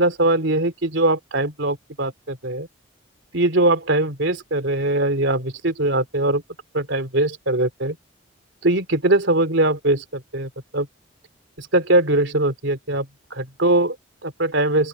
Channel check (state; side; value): normal; both; correlation -0.13